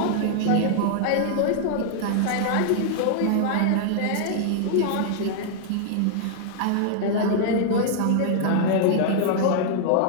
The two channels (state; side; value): different; both; correlation -0.01